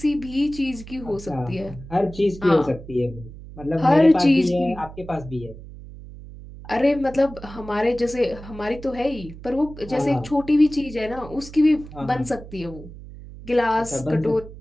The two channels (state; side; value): noise; right; hum, 15 dB below the sound